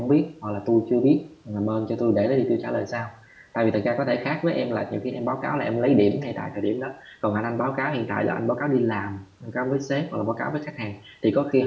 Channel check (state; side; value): identical; both; correlation 1.00